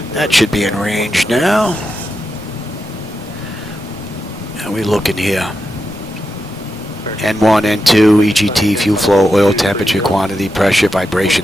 That should be in range now. How are we looking here? N1, N2, EGT, fuel flow, oil temperature, quantity, pressure,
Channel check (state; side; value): normal; both; correlation 0.87